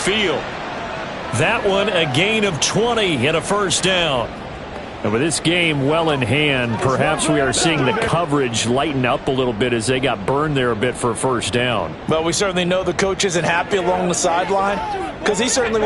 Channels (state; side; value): identical; both; correlation 1.00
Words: That one a gain of 20 and a first down. And with this game well in hand, perhaps we are seeing the coverage lighten up a little bit as they got burned there a bit for a first down. Well, we certainly know the coach isn't happy along the sideline because he certainly